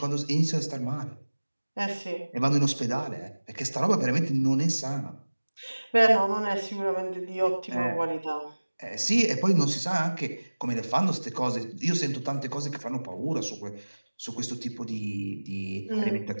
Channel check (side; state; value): both; inverted; correlation -1.00